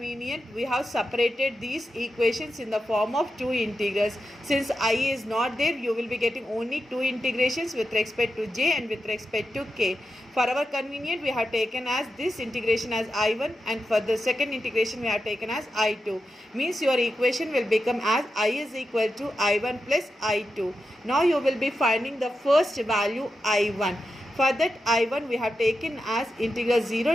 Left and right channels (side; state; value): both; normal; correlation 0.89